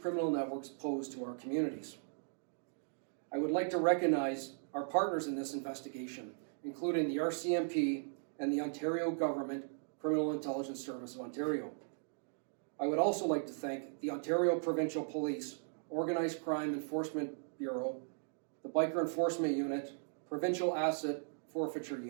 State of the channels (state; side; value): silent; left; digital silence